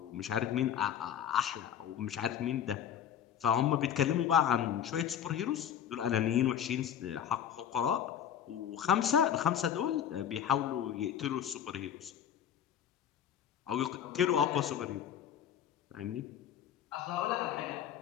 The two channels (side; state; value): right; quieter; 9.4 dB